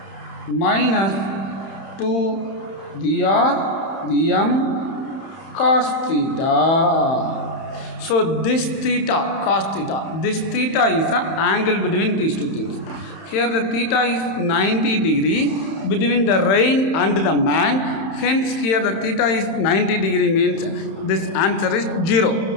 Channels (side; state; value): right; late; 31 ms